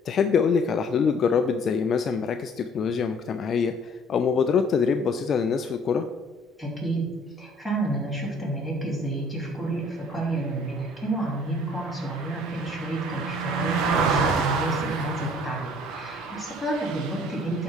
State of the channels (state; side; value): normal; both; correlation 0.56